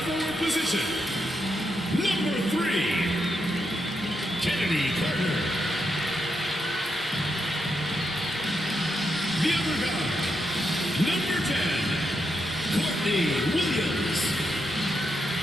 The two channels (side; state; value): both; normal; correlation 0.83